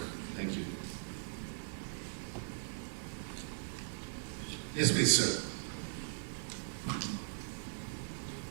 Thank you. Yes, please, sir.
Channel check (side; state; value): left; silent; digital silence